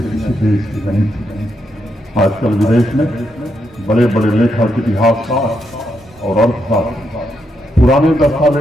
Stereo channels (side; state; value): both; normal; correlation 0.80